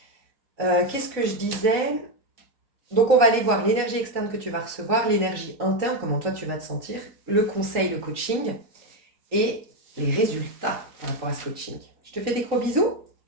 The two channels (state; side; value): late; left; 4.1 ms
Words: Qu'est-ce que je disais? Donc on va aller voir l'énergie externe que tu vas recevoir, l'énergie interne, comment toi tu vas te sentir, le conseil, le coaching et les résultats par rapport à ce coaching. Je te fais des gros bisous,